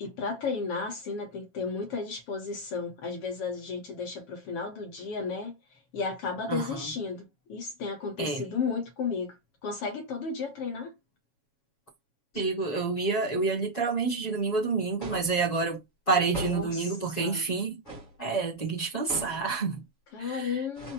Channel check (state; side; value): late; right; 7.2 ms